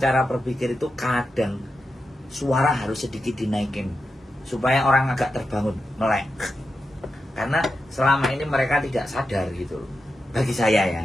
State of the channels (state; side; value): normal; both; correlation 0.89